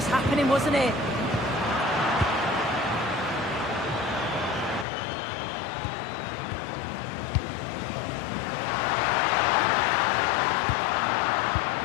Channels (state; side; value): drops out; right; at 4.9 s